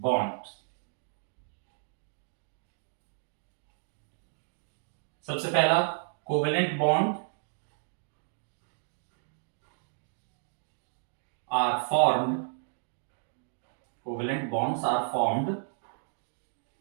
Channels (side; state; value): left; silent; digital silence